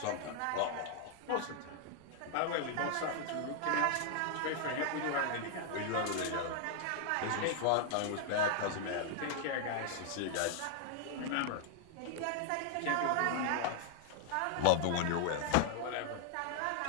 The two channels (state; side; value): different; both; correlation 0.00